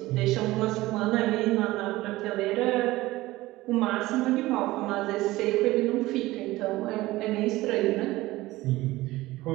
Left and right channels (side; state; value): left; quieter; 18.2 dB